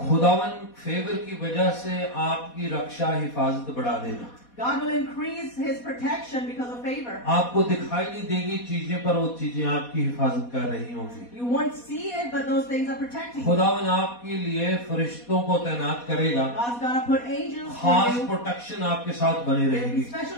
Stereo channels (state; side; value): late; right; 4.2 ms